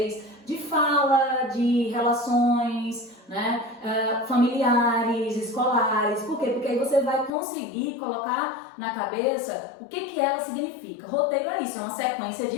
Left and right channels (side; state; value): right; drops out; at 7.3 s